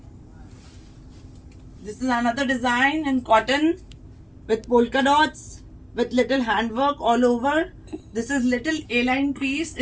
This is another design in cotton with polka dots with little handwork all over. This is little A-line piece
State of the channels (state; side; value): identical; both; correlation 1.00